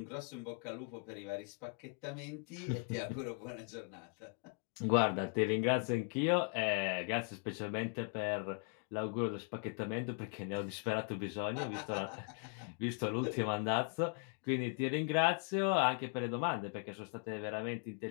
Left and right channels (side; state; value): right; quieter; 39.1 dB